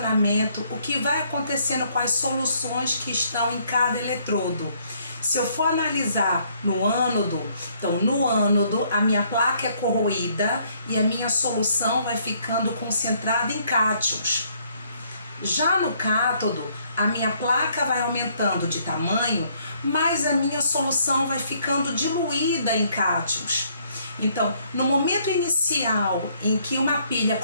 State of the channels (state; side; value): inverted; both; correlation -0.67